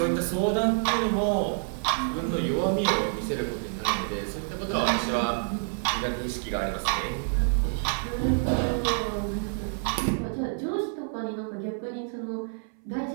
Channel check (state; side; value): silent; left; 59 dB below the other